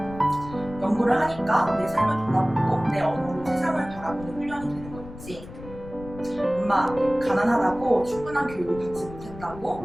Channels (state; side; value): noise; left; rumble, 15 dB below the sound